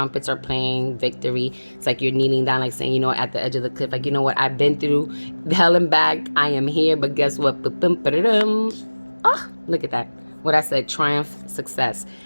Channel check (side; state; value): both; inverted; correlation -1.00